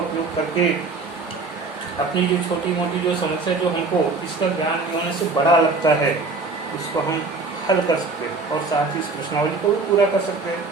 करके अपनी जो छोटी मोटी जो समस्या जो हमको इसका ज्ञान होने से बड़ा लगता है, उसको हम हल कर सकते हैं और साथ ही इस प्रश्नावली को भी पूरा कर सकते हैं।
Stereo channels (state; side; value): quieter; left; 3.9 dB